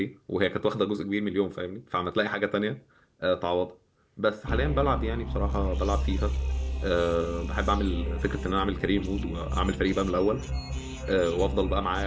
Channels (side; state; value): both; identical; correlation 1.00